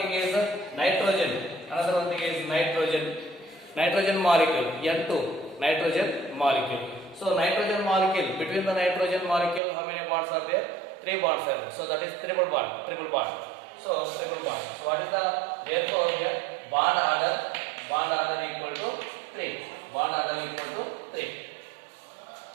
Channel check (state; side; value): drops out; left; at 9.6 s